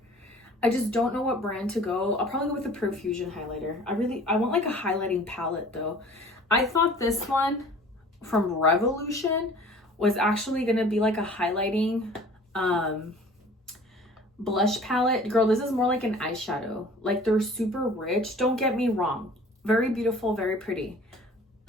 I just don't know what brand to go. I'll probably go with the Profusion highlighter. I want like a highlighting palette though. I thought this one from Revolution was actually gonna be like a highlighting blush palette. Girl, this is more like an eyeshadow. Like they're super rich. Don't get me wrong. Very beautiful, very pretty.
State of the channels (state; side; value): normal; both; correlation 0.48